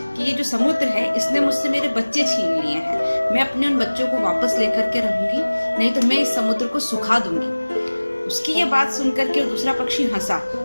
कि ये जो समुद्र है इसने मुझसे मेरे बच्चे छीन लिए हैं। मैं अपने उन बच्चों को वापस लेकर के रहूंगी, नहीं तो मैं इस समुद्र को सुखा दूंगी। उसकी ये बात सुनकर के दूसरा पक्षी हंसा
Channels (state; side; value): inverted; both; correlation -1.00